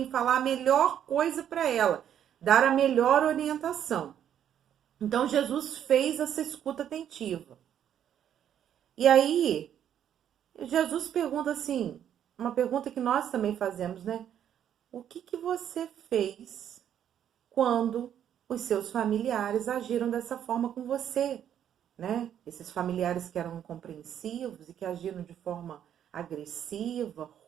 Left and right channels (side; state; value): left; quieter; 9.8 dB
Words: falar a melhor coisa para ela, dar a melhor orientação. Então, Jesus fez essa escuta atentiva. E aí, Jesus pergunta assim, uma pergunta que nós também fazemos, né? O que você fez quando os seus familiares agiram dessa forma com você, né? Esses familiares que eram incompreensivos e que agiram de forma agressiva,